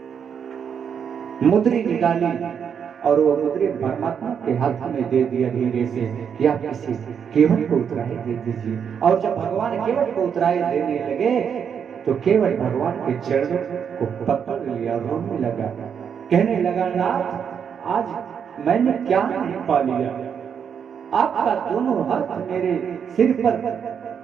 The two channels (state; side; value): quieter; left; 7.5 dB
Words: मुद्री निकाली और वो मुद्री परमात्मा के हाथ में दे दिया धीरे से कि आप किसी केवट को उतराई दे दीजिए। और जब भगवान केवट को उतराई देने लगे तो केवट भगवान के चरणों को पकड़ लिया, रोने लगा, कहने लगा नाथ आज मैंने क्या नहीं पा लिया। आपका दोनों हाथ मेरे सिर पर,